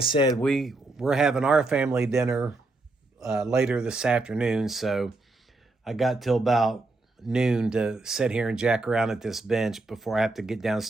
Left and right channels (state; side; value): quieter; left; 3.2 dB